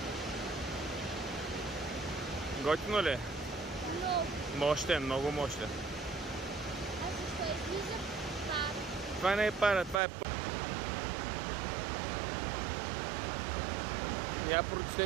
Готино ли е? Много. Мощен, много мощен. А защо излиза пара? Това не е пара, това е Я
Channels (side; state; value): left; drops out; at 10.0 s